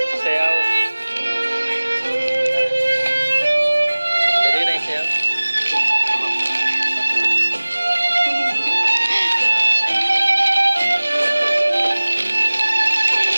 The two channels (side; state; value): both; inverted; correlation -1.00